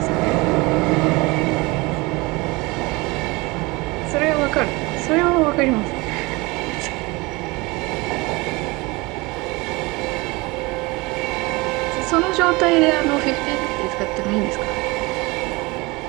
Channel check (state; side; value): quieter; left; 24.3 dB